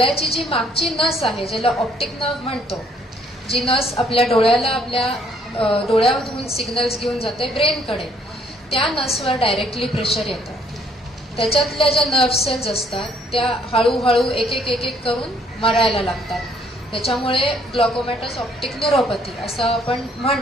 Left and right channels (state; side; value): normal; both; correlation 0.65